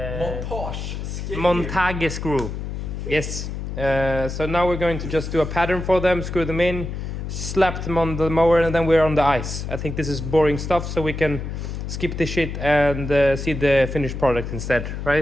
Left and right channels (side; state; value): left; noise; hum, 6 dB below the sound